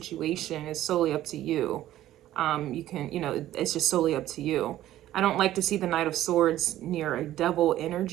is solely up to you. You can, it's just solely up to you. I don't like to see the Knight of Swords near a devil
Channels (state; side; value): quieter; left; 13.7 dB